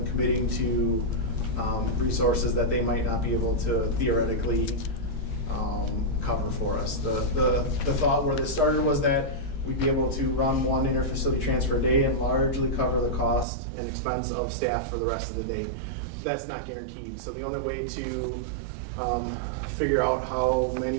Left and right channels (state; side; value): drops out; left; at 13.5 s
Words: committing to resources that they might not be able to theoretically cover for us. The thought where this started was that we'd be able to run one interfacility transfer a day and largely cover the cost and expense of staff for the rest of the day. That's not guaranteed. So the only way to figure out how